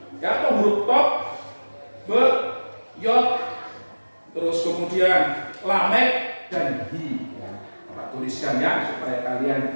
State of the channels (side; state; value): both; inverted; correlation -1.00